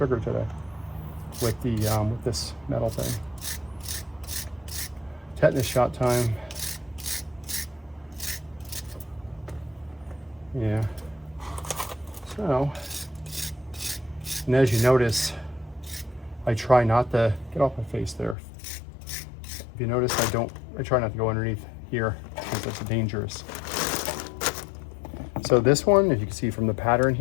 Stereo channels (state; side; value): drops out; right; at 18.4 s